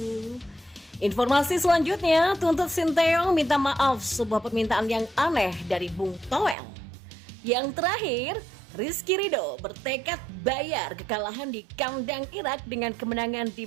Informasi selanjutnya, tuntut Sinteyong minta maaf sebuah permintaan yang aneh dari Bung Toel. Yang terakhir, Rizky Ridho bertekad bayar kekalahan di kandang Irak dengan kemenangan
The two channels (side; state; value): left; drops out; at 6.6 s